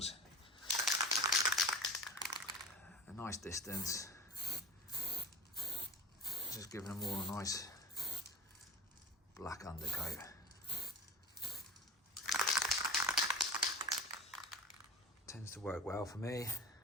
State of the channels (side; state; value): both; normal; correlation 0.37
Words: A nice distance. Just giving them all a nice black undercoat. Tends to work well for me.